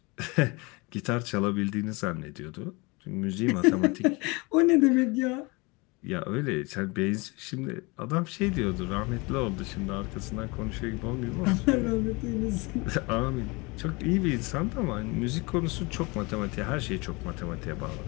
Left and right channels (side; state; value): right; quieter; 26.5 dB